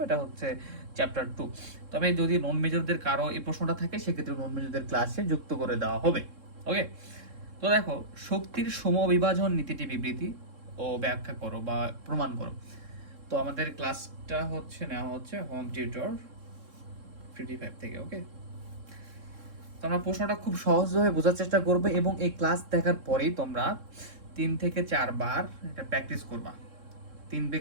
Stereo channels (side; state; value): left; late; 3.7 ms